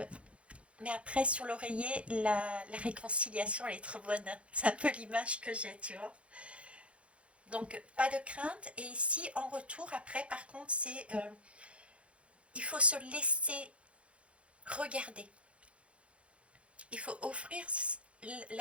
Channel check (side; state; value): left; late; 0.061 ms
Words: après sur l'oreiller, la réconciliation elle est trop bonne, c'est un peu l'image que j'ai, tu vois. Donc pas de crainte, et ici en retour après par contre c'est, il faut se laisser regarder, il faut offrir